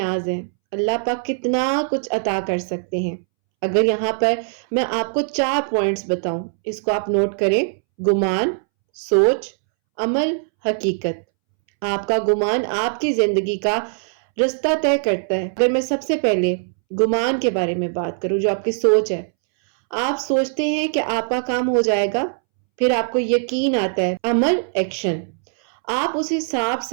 हैं, अल्लाह पाक कितना कुछ अता कर सकते हैं। अगर यहाँ पर मैं आपको 4 पॉइंट्स बताऊं, इसको आप नोट करें। गुमान, सोच, अमल, हकीकत। आपका गुमान आपकी जिंदगी का रास्ता तय करता है। अगर मैं सबसे पहले गुमान के बारे में बात करूं, जो आपकी सोच है, आप सोचते हैं कि आपका काम हो जाएगा, फिर आपको यकीन आता है, अमल, एक्शन, आप उस हिसाब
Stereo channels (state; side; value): silent; left; 65 dB below the other